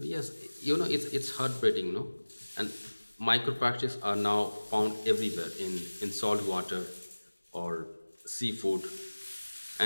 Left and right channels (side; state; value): both; inverted; correlation -1.00